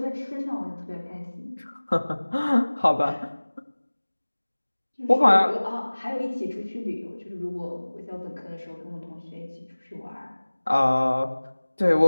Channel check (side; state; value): both; inverted; correlation -1.00